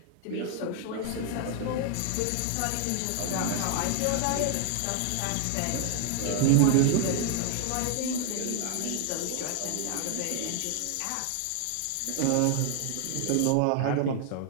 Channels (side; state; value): both; different; correlation 0.00